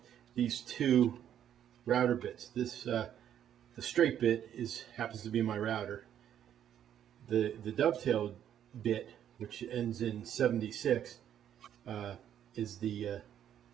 these two router bits. This the straight bit happens to be my router. The dovetail bit, which ends in 76, is the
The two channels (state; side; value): quieter; left; 10.1 dB